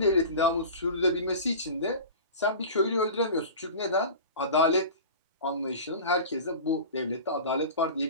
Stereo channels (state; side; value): inverted; both; correlation -0.34